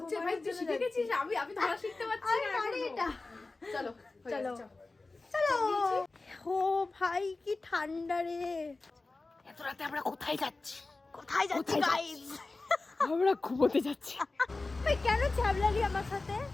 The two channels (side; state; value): right; quieter; 3.4 dB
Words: ভাই, তুই শিখে গেছিস, আমি ধরা শিখতে পারছি না এটা। চলো চলো চলো। ও ভাই কি ঠান্ডা রে। এত রাতে আমরা কোথায় যাচ্ছি? কোথায় যাচ্ছি গাইস? আমরা ঘুমোতে যাচ্ছি। ভাই কেন ছ্যাবলালি আমার সাথে?